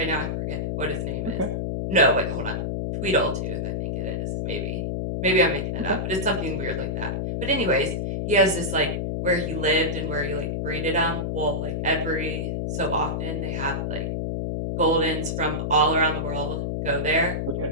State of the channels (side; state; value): left; noise; hum, 1 dB below the sound